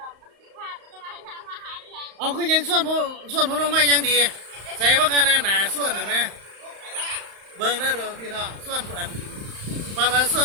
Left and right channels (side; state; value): left; late; 35 ms